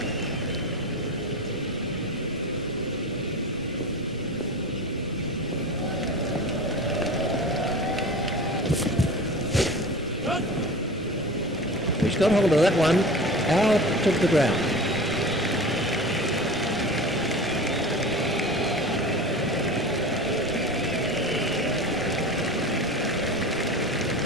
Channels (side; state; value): both; normal; correlation 0.33